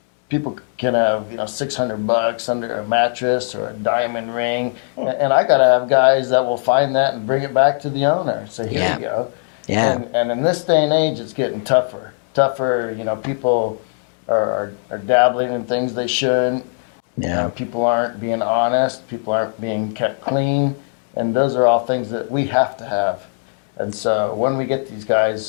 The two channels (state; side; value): silent; right; digital silence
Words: people can have, $600 under a mattress or a diamond ring. And I got to have guys that will find that and bring it back to the owner. So here you go. Yeah. And in this day and age, it's getting tougher. Tougher, people are dabbling in things they shouldn't. Yeah. People aren't being honest. People aren't being kept clean. And those are all things that we have to have. And so when we get these